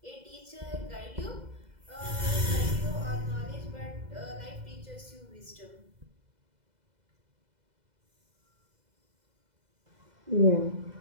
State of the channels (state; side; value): late; left; 2.0 ms